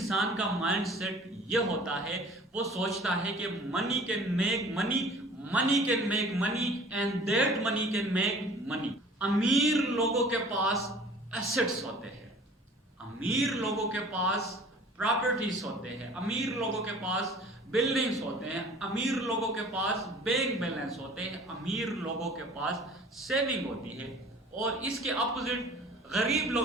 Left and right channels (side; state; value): both; normal; correlation 0.48